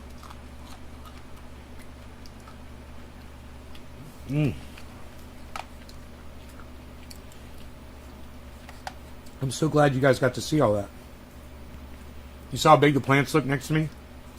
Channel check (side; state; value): both; identical; correlation 1.00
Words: I'm so glad you guys got to see all that. You saw how big the plants look next to me?